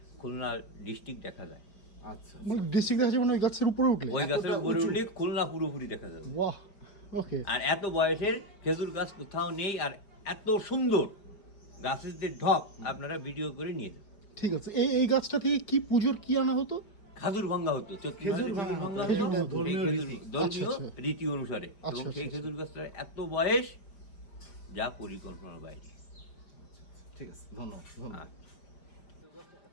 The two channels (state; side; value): late; right; 5.0 ms